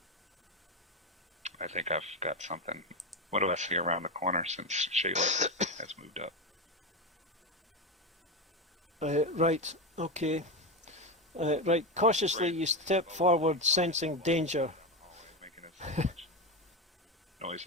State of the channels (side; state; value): both; normal; correlation 0.14